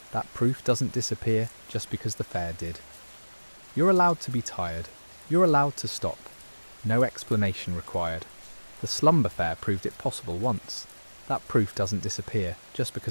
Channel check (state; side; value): inverted; both; correlation -1.00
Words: That proof doesn't disappear just because the fair did. You're allowed to be tired. You're allowed to stop. No explanation required. The slumber fair proved it possible once. That proof doesn't disappear just